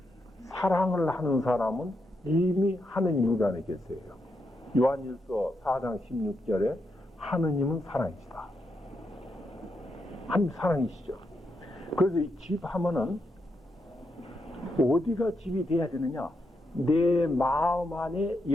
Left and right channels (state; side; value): normal; both; correlation 0.83